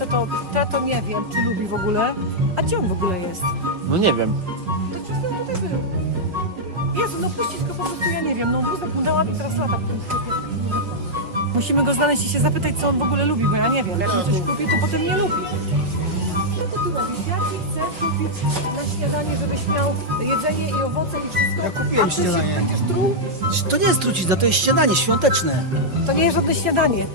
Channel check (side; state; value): left; late; 5.4 ms